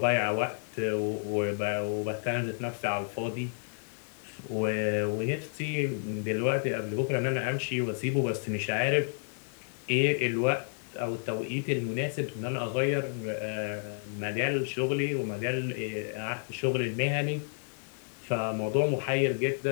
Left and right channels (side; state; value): right; silent; digital silence